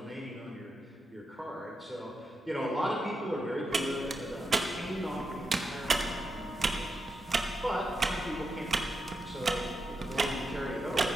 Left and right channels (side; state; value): both; normal; correlation 0.86